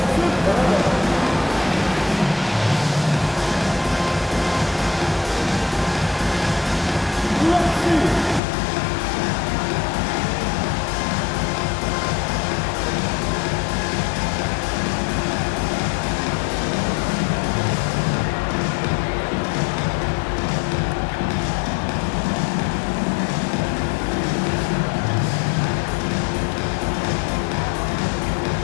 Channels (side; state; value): right; drops out; at 8.4 s